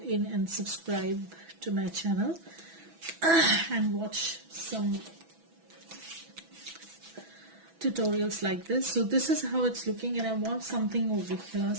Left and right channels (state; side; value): late; left; 6.1 ms